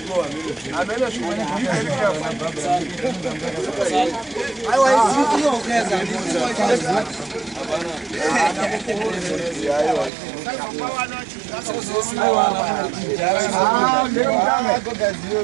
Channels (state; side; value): drops out; left; at 10.1 s